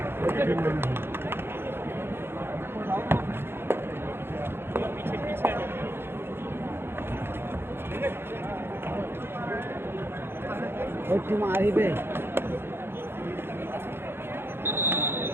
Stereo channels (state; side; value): late; left; 0.11 ms